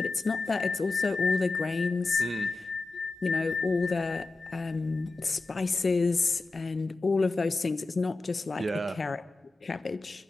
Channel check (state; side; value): quieter; right; 3.6 dB